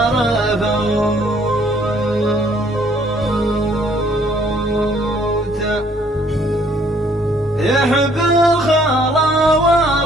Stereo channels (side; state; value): both; normal; correlation 0.63